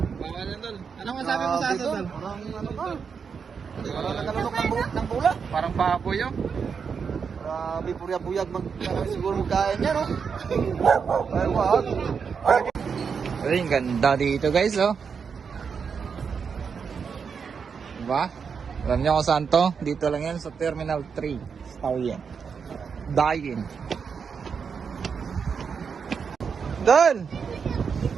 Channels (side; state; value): left; quieter; 6.1 dB